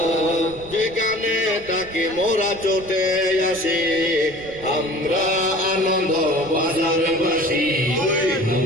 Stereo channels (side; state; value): right; noise; rumble, 19 dB below the sound